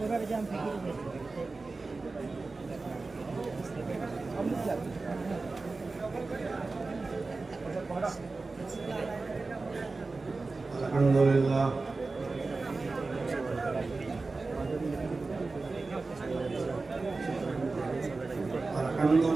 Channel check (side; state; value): left; quieter; 3.7 dB